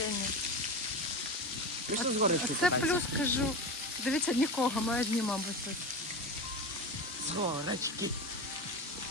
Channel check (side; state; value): both; normal; correlation 0.24